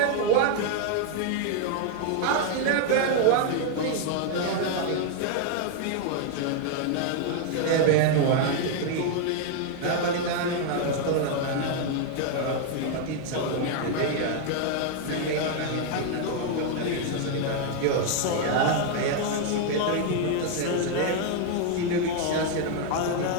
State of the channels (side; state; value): both; different; correlation 0.00